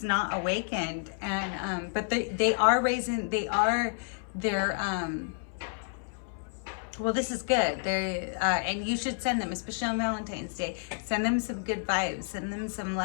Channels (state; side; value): silent; right; 58 dB below the other